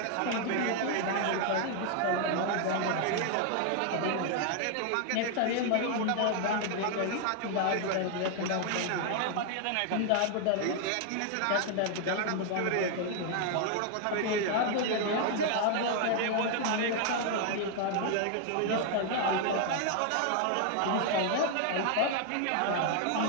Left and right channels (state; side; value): different; both; correlation 0.00